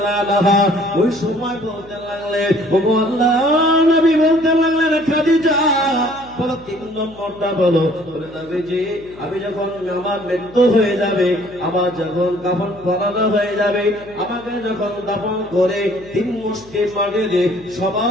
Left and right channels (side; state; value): left; noise; hum, 23 dB below the sound